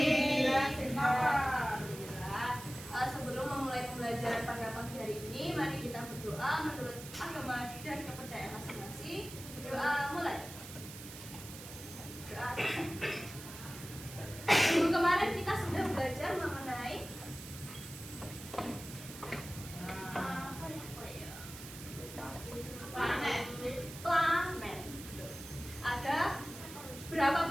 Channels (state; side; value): noise; right; hiss, 13 dB below the sound